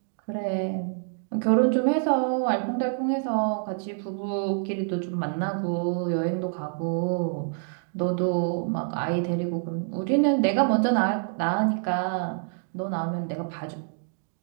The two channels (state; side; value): silent; left; digital silence